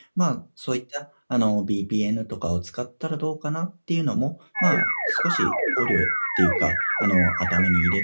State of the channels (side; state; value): both; inverted; correlation -1.00